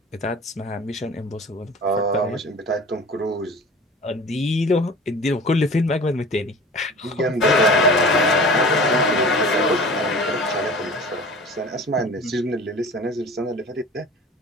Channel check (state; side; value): normal; both; correlation 0.40